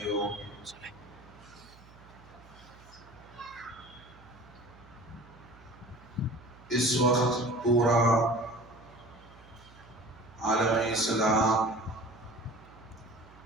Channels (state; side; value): noise; right; hum, 23 dB below the sound